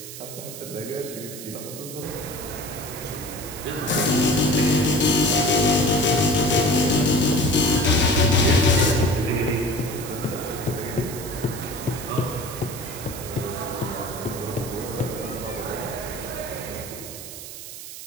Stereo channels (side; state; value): right; noise; hiss, 12 dB below the sound